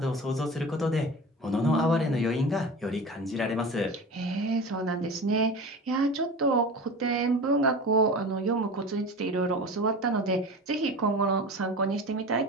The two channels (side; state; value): both; normal; correlation 0.32